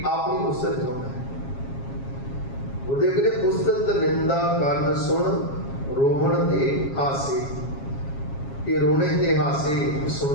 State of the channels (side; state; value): right; late; 7.3 ms